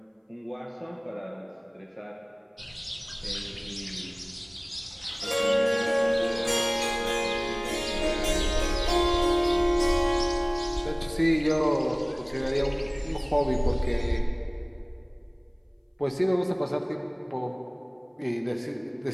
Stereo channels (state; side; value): identical; both; correlation 1.00